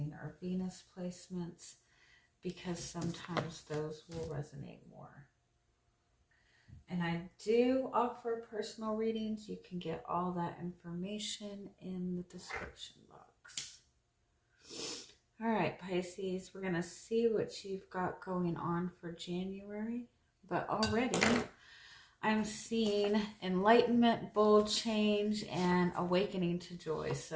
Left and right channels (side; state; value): both; identical; correlation 1.00